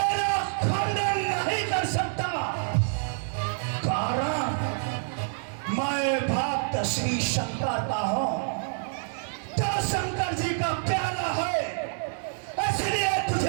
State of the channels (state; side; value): silent; left; digital silence